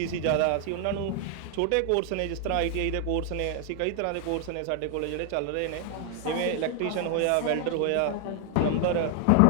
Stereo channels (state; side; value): different; both; correlation 0.00